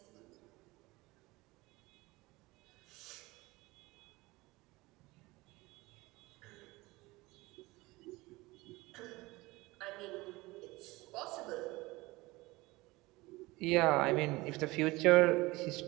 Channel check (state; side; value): quieter; left; 21.4 dB